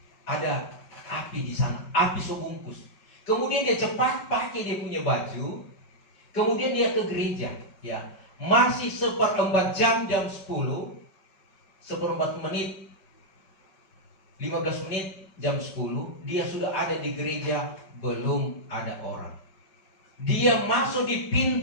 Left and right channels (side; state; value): right; late; 5.2 ms